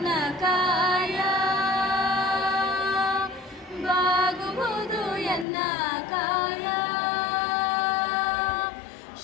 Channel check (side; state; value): right; drops out; at 5.5 s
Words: ಕಾಯ, ಬಾಗುವುದು ಎನ್ನ ಕಾಯ.